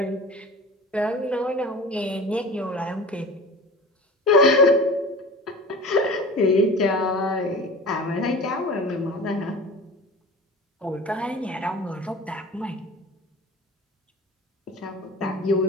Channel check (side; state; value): both; normal; correlation 0.37